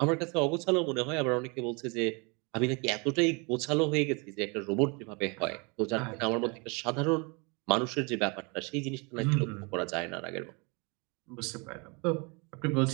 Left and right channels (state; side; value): quieter; left; 30.8 dB